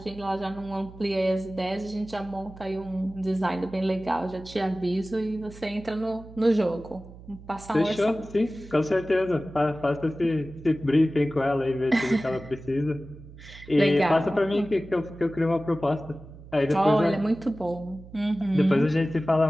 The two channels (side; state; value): right; noise; hum, 18 dB below the sound